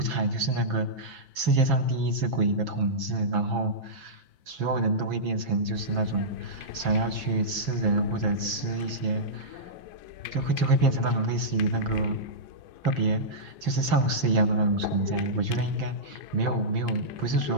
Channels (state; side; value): late; left; 6.0 ms